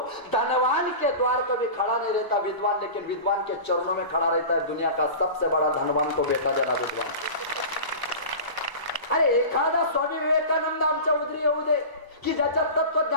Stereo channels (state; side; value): late; right; 1.0 ms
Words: धनवान के द्वार कभी खड़ा नहीं रहता विद्वान, लेकिन विद्वान के चरणों में खड़ा रहता है. दुनिया का सबसे बड़ा धनवान को बेटा देना विद्वान. अरे एखादा स्वामी विवेकानंद आमच्या उदरी येऊ दे की ज्याच्या